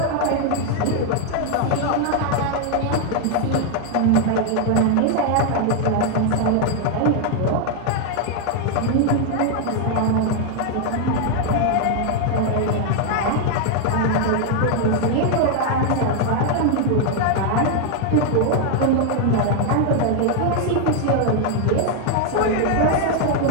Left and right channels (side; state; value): both; different; correlation 0.00